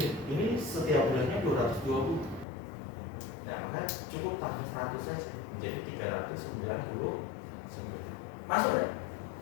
ini setiap bulannya 220. Nah, maka cukup tambah 100 saja, menjadi 399. Masuk ya?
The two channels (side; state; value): right; drops out; at 2.5 s